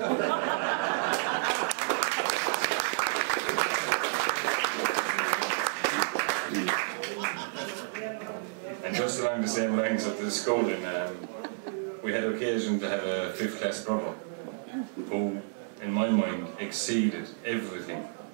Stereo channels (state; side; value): silent; left; 58 dB below the other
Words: And just along the same lines of the schooling, we had occasion to have a 5th class brother who, in my mind, exceeded everything